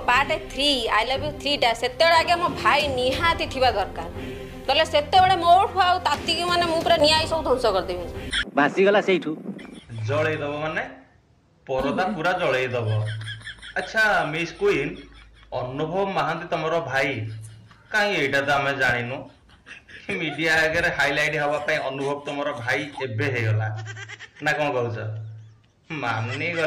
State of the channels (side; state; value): both; identical; correlation 1.00